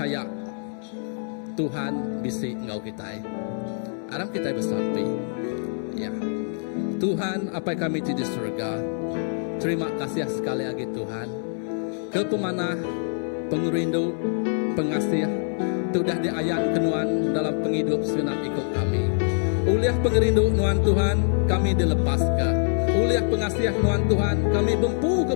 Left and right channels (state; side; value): silent; right; digital silence